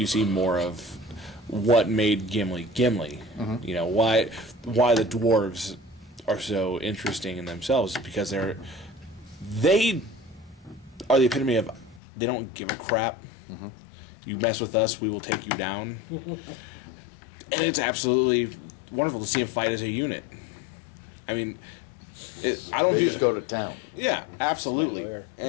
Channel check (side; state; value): right; drops out; at 12.0 s